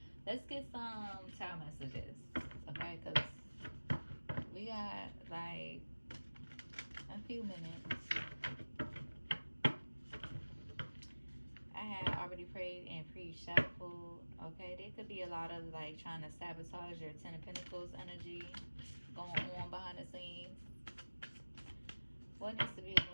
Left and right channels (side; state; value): both; inverted; correlation -1.00